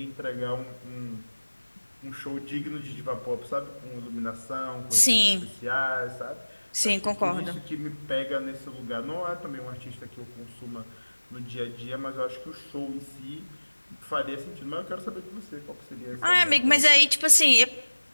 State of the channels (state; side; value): inverted; both; correlation -1.00